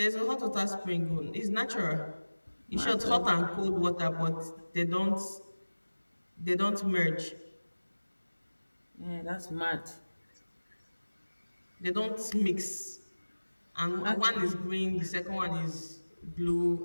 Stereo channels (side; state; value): both; inverted; correlation -1.00